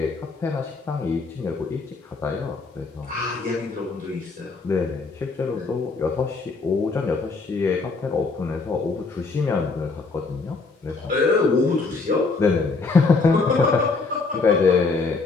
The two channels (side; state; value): right; quieter; 4.0 dB